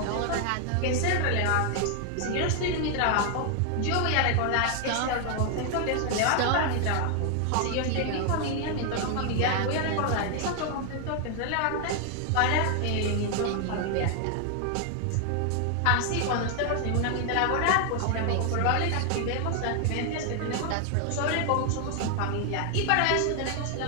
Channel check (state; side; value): different; both; correlation 0.00